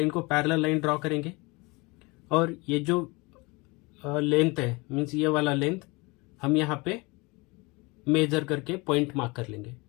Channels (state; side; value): quieter; right; 25.9 dB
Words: को पैरेलल लाइन ड्रॉ करेंगे। और ये जो लेंथ है, मीन्स ये वाला लेंथ हम यहाँ पे मेजर करके पॉइंट मार्क कर लेंगे,